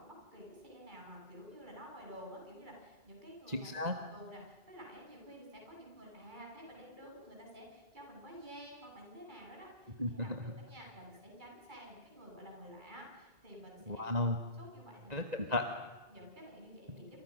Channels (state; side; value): late; left; 2.0 ms